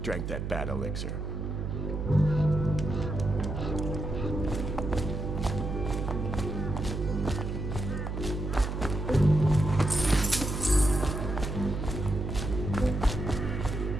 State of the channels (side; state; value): right; noise; hum, 4 dB below the sound